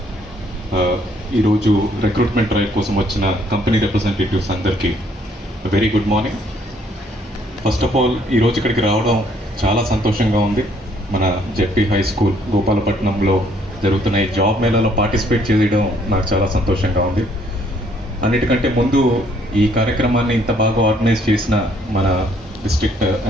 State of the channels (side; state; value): both; normal; correlation 0.65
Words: ఈరోజు రిక్రూట్మెంట్ డ్రైవ్ కోసం వచ్చిన కంపెనీ రిప్రజెంటేటివ్స్ అందరికీ very good morning. First of all ఈరోజు ఇక్కడికి రావడం చాలా సంతోషంగా ఉంది. మన జెడ్పీ హై స్కూల్ గోపాలపట్నంలో జరుగుతున్న ఈ జాబ్ మేళాలో పార్టిసిపేట్ చేయడం నాకు చాలా సంతోషంగా ఉంది. అన్నిటికంటే ముందు ఈ కార్యక్రమాన్ని ఇంత బాగా ఆర్గనైజ్ చేసిన మన డిస్ట్రిక్ట్